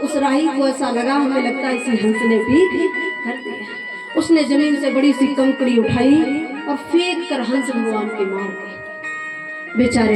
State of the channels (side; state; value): both; identical; correlation 1.00